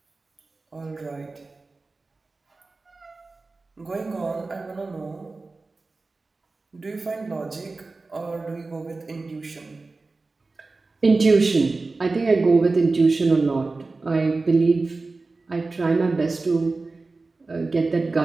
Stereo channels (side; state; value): left; quieter; 3.6 dB